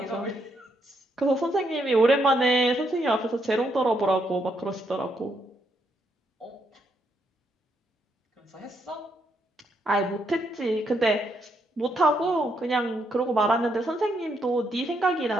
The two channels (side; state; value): both; normal; correlation 0.76